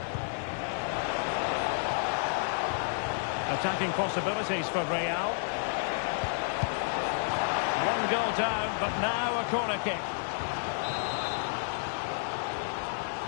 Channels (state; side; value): silent; right; 57 dB below the other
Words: Attacking possibilities for Real. One goal down, but now a corner kick.